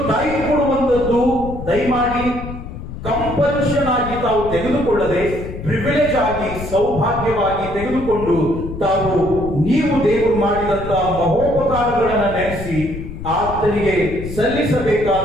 ಟೈಪ್ ಕೊಡುವಂತದ್ದು ದಯಮಾಡಿ ಕಂಪಲ್ಷನ್ ಆಗಿ ತಾವು ತೆಗೆದುಕೊಳ್ಳದೆ ಪ್ರಿವಿಲೇಜ್ ಆಗಿ ಸೌಭಾಗ್ಯವಾಗಿ ತೆಗೆದುಕೊಂಡು ತಾವು ನೀವು ದೇವರು ಮಾಡಿದಂತಹ ಮಹೋಪಕಾರಗಳನ್ನ ನೆನೆಸಿ ಆತನಿಗೆ ಸಲ್ಲಿಸಬೇಕಾದ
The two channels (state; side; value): noise; left; rumble, 9 dB below the sound